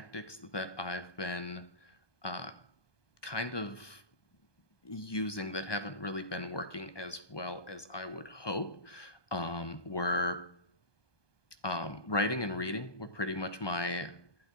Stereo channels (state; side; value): late; right; 1.2 ms